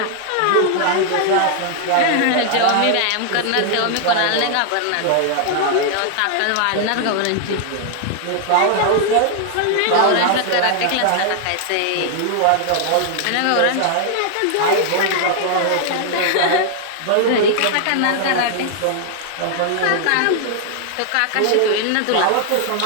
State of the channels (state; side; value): different; both; correlation 0.00